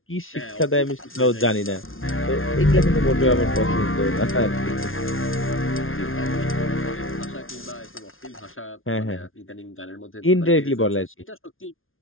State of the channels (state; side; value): late; right; 0.60 ms